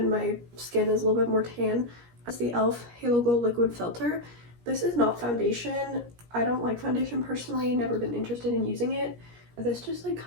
my skin is a little bit more tan, it's the e.l.f. Halo Glow Liquid Filter. This is not foundation. I don't like foundation personally, never been interested in using it. This just like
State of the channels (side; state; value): left; late; 17 ms